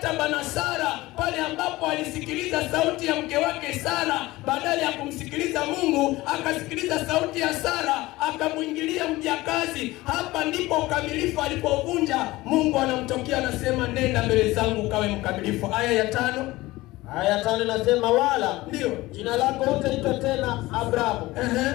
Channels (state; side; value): quieter; right; 19.1 dB